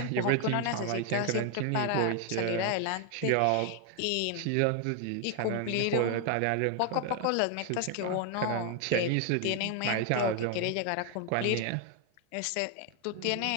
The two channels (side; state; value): both; different; correlation 0.00